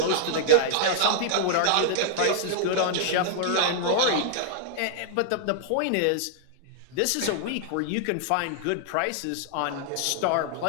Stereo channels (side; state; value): both; different; correlation -0.01